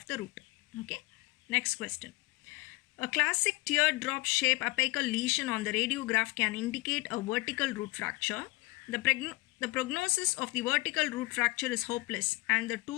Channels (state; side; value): quieter; right; 22.6 dB